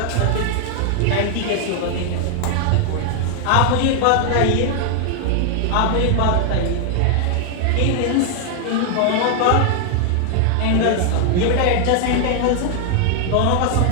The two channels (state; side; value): different; both; correlation 0.00